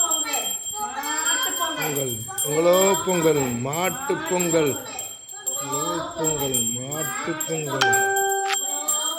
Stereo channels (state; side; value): identical; both; correlation 1.00